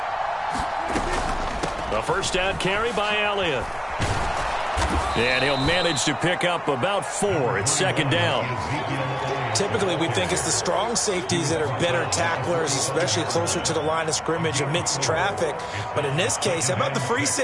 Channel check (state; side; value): identical; both; correlation 1.00